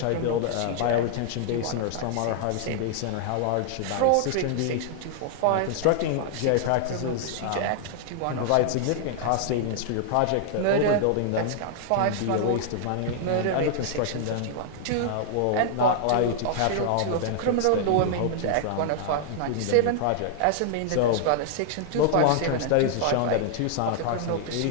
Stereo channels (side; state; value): both; different; correlation -0.01